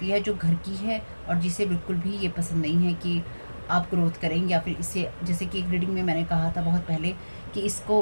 है जो घर की है और जिसे बिल्कुल भी ये पसंद नहीं है कि आप ग्रोथ करें, या फिर इससे, जैसे कि एक रीडिंग में मैंने कहा था बहुत पहले कि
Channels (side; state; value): both; inverted; correlation -1.00